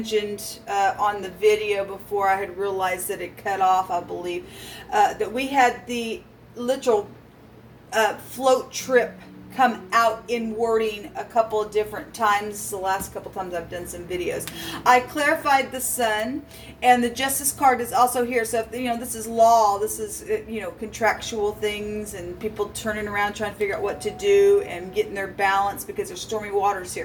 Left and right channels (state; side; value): identical; both; correlation 1.00